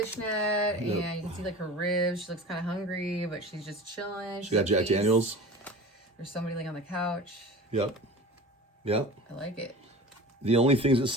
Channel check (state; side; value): normal; both; correlation 0.36